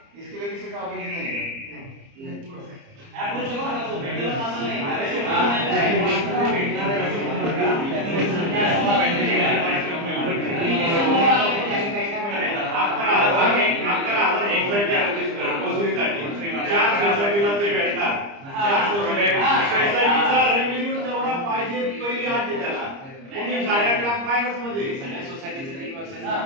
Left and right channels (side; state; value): left; late; 30 ms